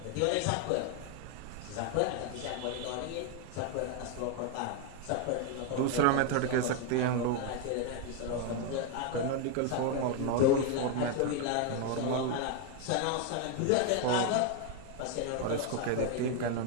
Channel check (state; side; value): different; both; correlation 0.01